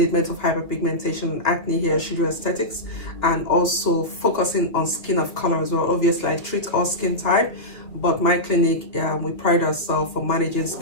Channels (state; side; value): late; right; 2.5 ms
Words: of hyperpigmentation and acne here at Shujo Aesthetics, and also focusing on skin of color as well. Obviously, I treat all skin type, but my clinic, we pride ourselves for managing